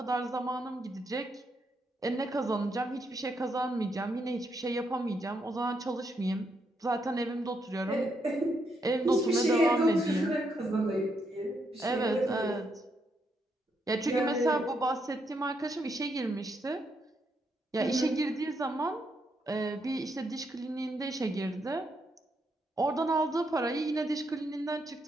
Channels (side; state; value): both; normal; correlation 0.78